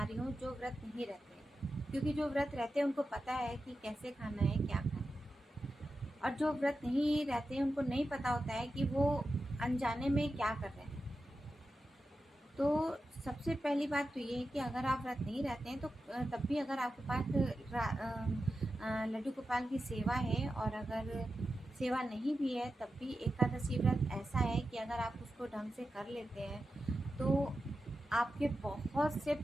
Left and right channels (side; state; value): both; normal; correlation 0.91